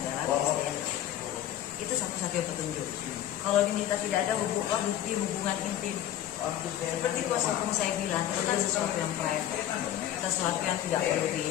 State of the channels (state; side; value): quieter; right; 11.9 dB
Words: DNA. Itu satu-satunya petunjuk. Kalau diminta tidak ada bukti hubungan intim, seperti kuasa hukum saya bilang, itu kan sesuatu yang private, sesuatu yang tidak